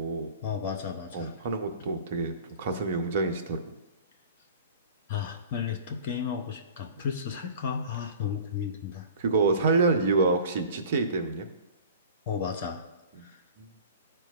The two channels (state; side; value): inverted; both; correlation -0.42